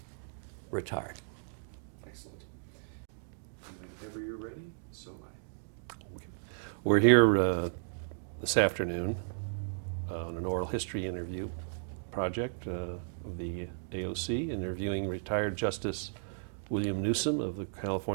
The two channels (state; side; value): silent; left; digital silence